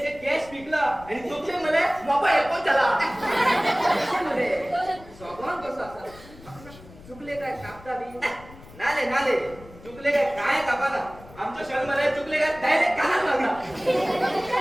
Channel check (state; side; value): noise; left; rumble, 20 dB below the sound